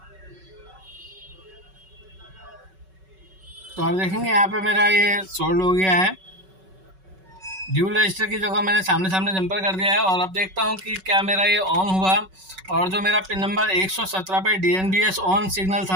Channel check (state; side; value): late; left; 5.3 ms